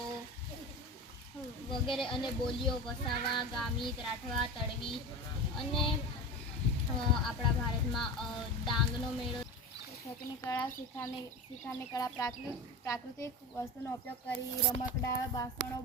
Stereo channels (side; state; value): both; normal; correlation 0.27